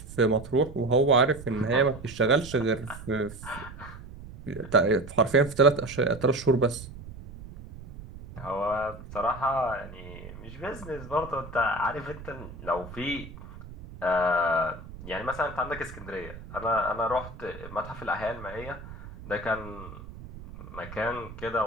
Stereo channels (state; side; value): noise; right; rumble, 14 dB below the sound